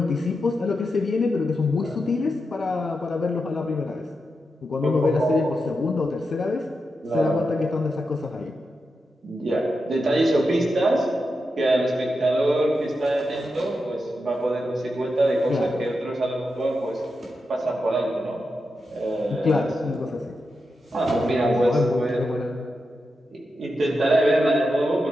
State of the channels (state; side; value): normal; both; correlation 0.88